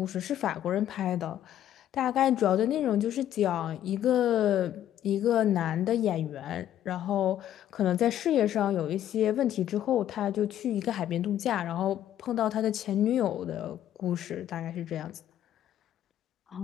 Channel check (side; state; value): right; quieter; 11.4 dB